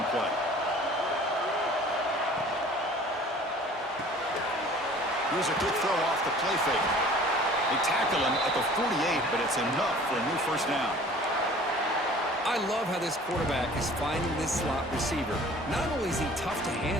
play? Here's a good throw off the play fake. They tackle him at the 48, but it's enough for a new 1st down. I love how this quarterback is finding this slot receiver. Not only is he tough to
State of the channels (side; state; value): both; normal; correlation 0.48